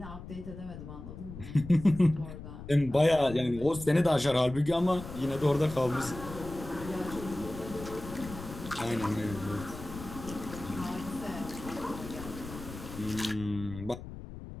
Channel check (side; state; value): left; noise; rumble, 12 dB below the sound